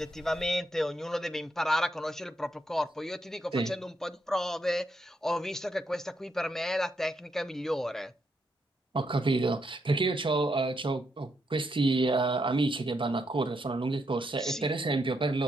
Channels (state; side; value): normal; both; correlation 0.79